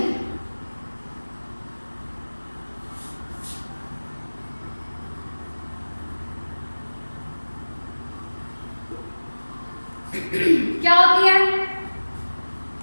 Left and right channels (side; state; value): both; inverted; correlation -1.00